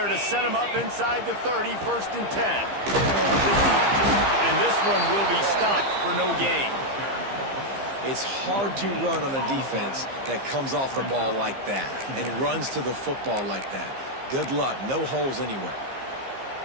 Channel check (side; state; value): left; late; 15 ms